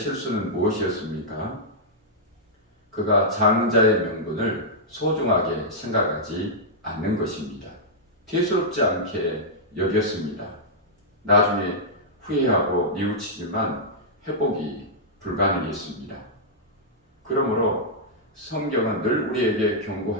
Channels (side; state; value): both; normal; correlation -0.09